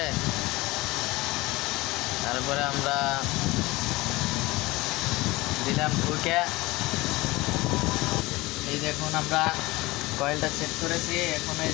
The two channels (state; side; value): quieter; right; 21.1 dB